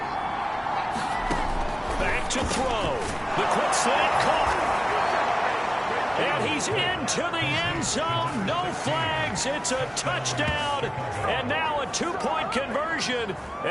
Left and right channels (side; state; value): both; identical; correlation 1.00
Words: Back to throw. The quick slant caught. And he's into the end zone. No flags. It's a touchdown. And now a two-point conversion.